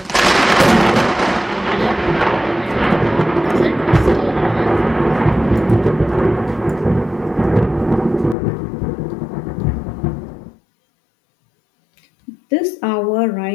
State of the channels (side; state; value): right; drops out; at 8.3 s